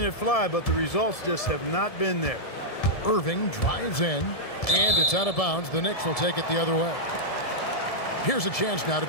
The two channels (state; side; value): late; right; 1.7 ms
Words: it fly, but the results just have not been there. Irving drives in, and it's out of bounds. The Knicks will take it the other way. Here's a chance now to